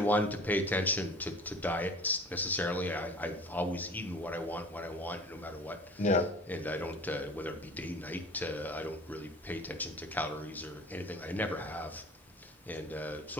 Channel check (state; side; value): normal; both; correlation 0.43